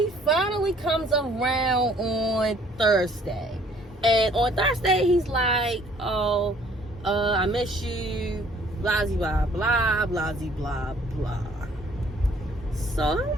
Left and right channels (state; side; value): normal; both; correlation 0.59